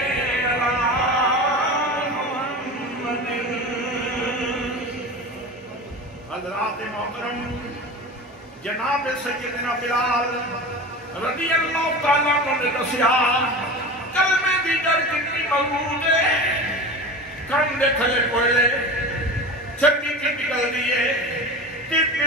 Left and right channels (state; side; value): normal; both; correlation 0.31